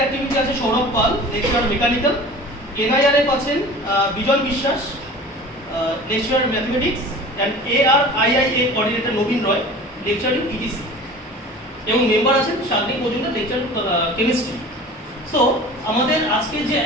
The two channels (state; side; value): normal; both; correlation 0.40